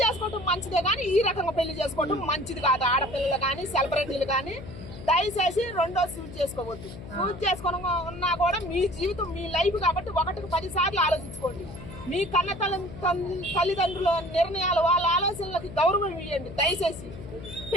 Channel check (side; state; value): left; noise; hum, 13 dB below the sound